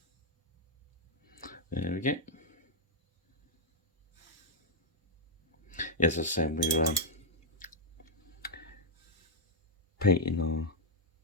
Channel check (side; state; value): both; normal; correlation -0.03